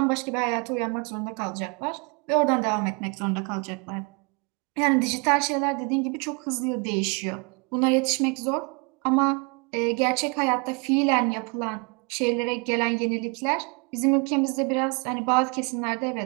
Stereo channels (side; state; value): left; quieter; 32.5 dB